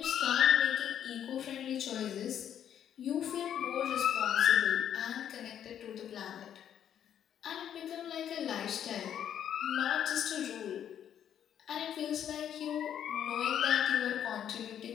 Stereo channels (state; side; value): quieter; right; 9.6 dB